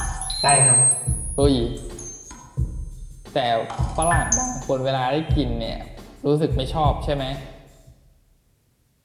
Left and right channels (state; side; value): identical; both; correlation 1.00